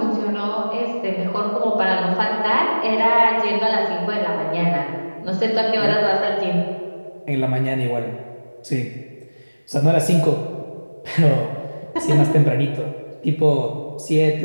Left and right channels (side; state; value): both; inverted; correlation -1.00